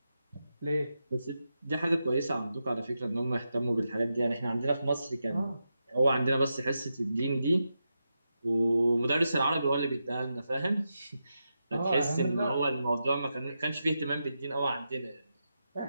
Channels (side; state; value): both; inverted; correlation -0.88